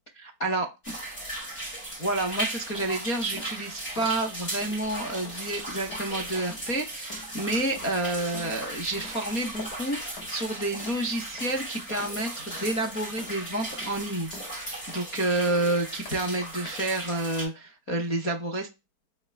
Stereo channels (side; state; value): right; late; 4.5 ms